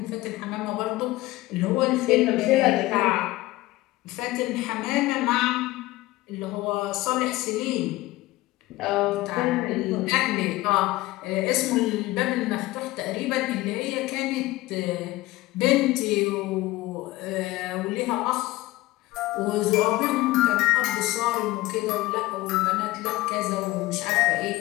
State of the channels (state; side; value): quieter; right; 18.6 dB